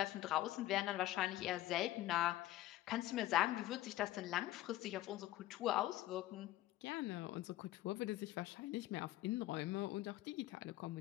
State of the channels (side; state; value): right; quieter; 15.5 dB